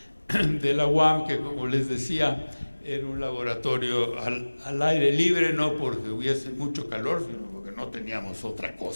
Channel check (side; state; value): both; inverted; correlation -1.00